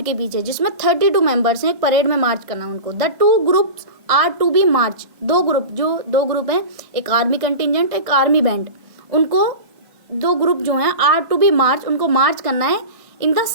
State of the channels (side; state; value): left; late; 1.6 ms